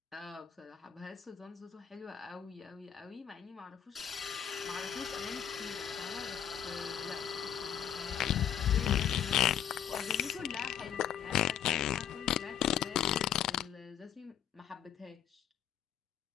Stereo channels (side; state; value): right; quieter; 9.5 dB